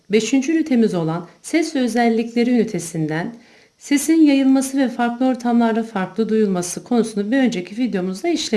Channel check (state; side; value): identical; both; correlation 1.00